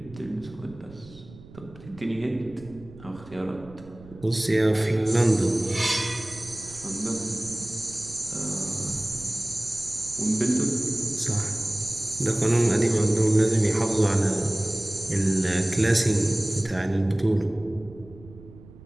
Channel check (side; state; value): right; noise; rumble, 19 dB below the sound